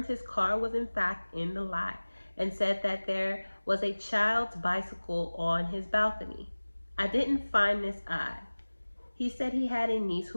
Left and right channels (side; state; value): both; inverted; correlation -1.00